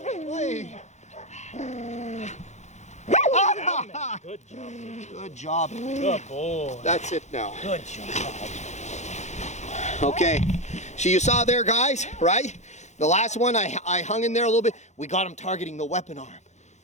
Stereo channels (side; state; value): right; late; 0.33 ms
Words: Good job. Good job. Good boy. That's it now. Good job. Okay, so you saw there, guys, right? The last one, I hung in there a little bit. We got him targeting the weapon arm,